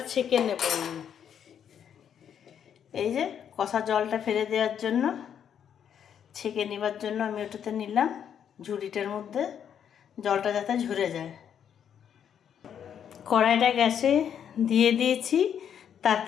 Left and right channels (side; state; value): right; quieter; 8.6 dB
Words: ছেঁকে নেব। এই যে কষা জলটা ফেলে দেওয়ার জন্য, ছেঁকে নেবার জন্য আমি ওটাতে নিলাম ঝুড়িটার মধ্যে, জলটা যাতে ঝরে যায়। কড়াইটা গ্যাসে দিয়ে দিয়েছি,